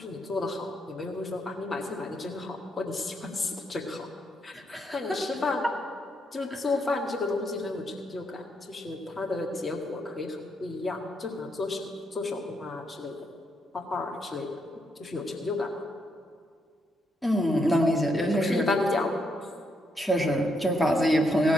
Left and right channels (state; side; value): normal; both; correlation 0.78